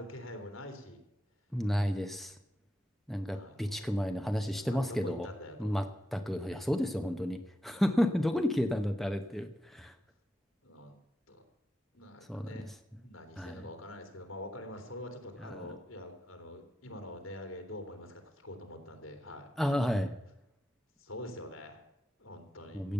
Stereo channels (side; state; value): both; normal; correlation 0.88